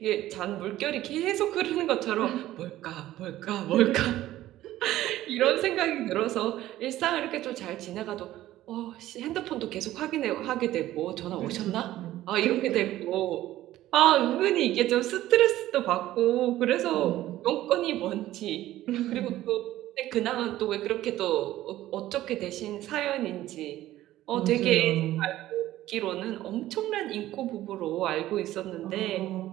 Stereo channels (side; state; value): left; quieter; 14.6 dB